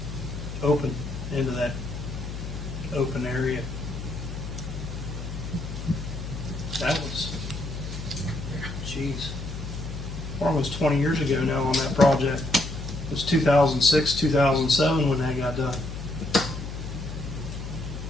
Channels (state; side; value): noise; left; hum, 7 dB below the sound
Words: open, into that open area. That was, almost 20 years ago now on that project. It was 2006, 2007 when that got done.